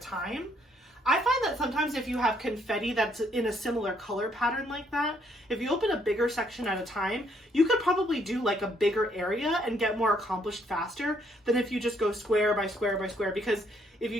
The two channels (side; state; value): both; normal; correlation 0.69